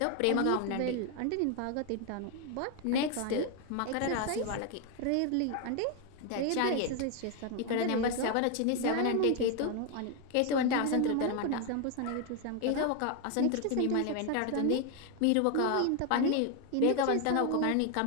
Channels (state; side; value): different; both; correlation 0.01